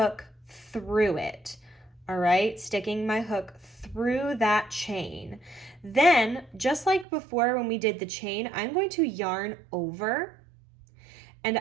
through it. All right, sticking my hook through that chain. Then, just like before when we did the chain, I'm going to yarn over and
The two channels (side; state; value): left; drops out; at 7.1 s